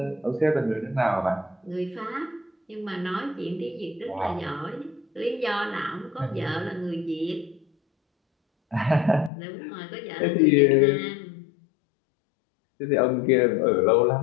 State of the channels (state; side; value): drops out; right; at 9.3 s